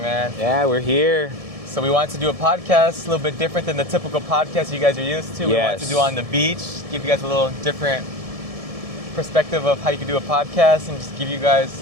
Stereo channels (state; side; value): late; left; 1.7 ms